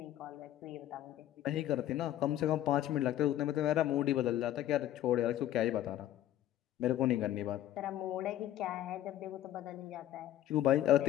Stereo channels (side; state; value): right; quieter; 12.8 dB